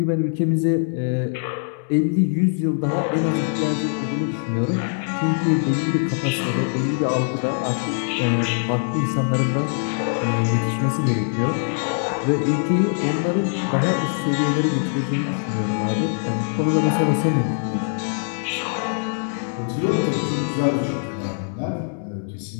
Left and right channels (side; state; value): right; silent; digital silence